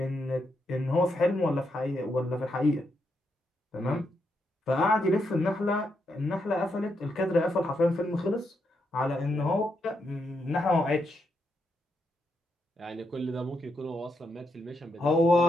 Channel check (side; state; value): both; normal; correlation 0.81